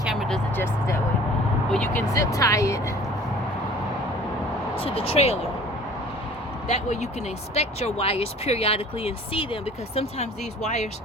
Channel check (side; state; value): both; normal; correlation 0.47